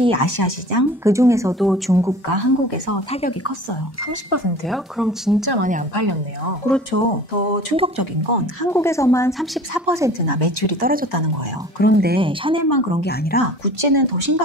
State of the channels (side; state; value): both; normal; correlation 0.43